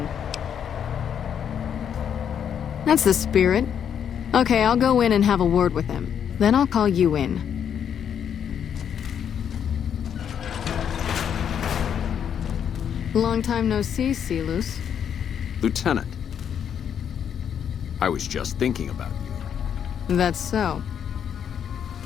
That's the spirit. Okay, I'll go in and have a word with him. Then I'll call you in. Long time no see, Celus. Lieutenant. I was just thinking about you. That's so.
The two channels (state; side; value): quieter; right; 8.4 dB